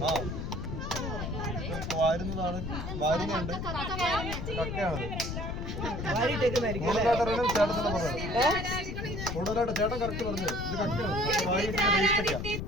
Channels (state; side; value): noise; left; rumble, 4 dB below the sound